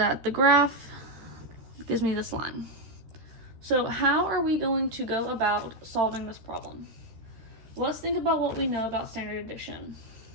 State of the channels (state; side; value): late; left; 13 ms